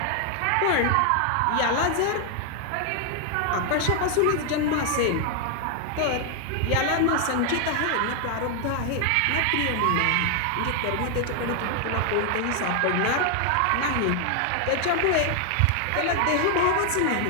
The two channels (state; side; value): different; both; correlation 0.00